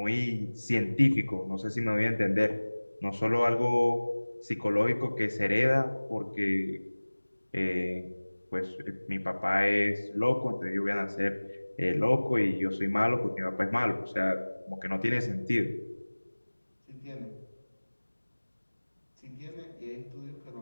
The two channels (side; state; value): both; inverted; correlation -1.00